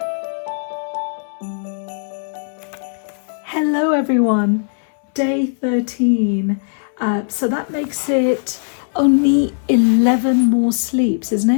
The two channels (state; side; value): silent; right; 67 dB below the other